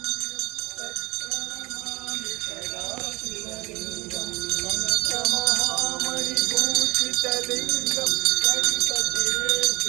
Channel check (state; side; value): quieter; left; 22.7 dB